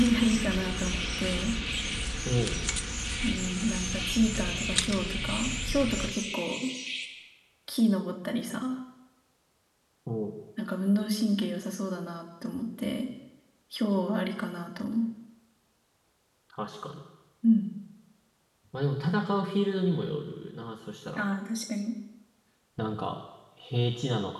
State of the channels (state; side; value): identical; both; correlation 1.00